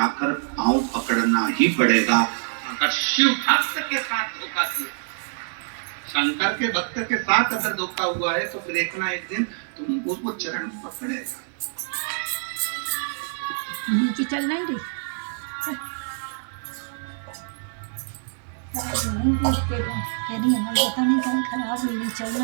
पांव पकड़ना ही पड़ेगा। अगर शिव भक्त के साथ धोखा किया, शंकर के भक्त के साथ अगर धोखा हुआ है, तो फिर एक ना एक दिन तुम उसको चरण पकड़ेगा। नीचे चल नहीं रही, क्या नहीं है, पता नहीं क्या खराब हुई, चल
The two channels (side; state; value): left; silent; 57 dB below the other